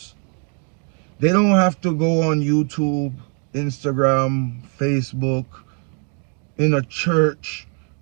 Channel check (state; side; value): quieter; left; 37.6 dB